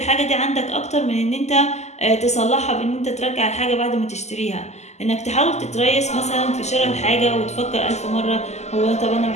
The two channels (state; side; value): late; right; 0.33 ms